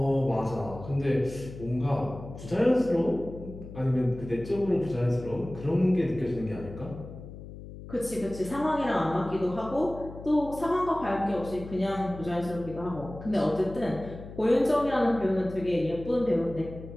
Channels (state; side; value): noise; left; hum, 13 dB below the sound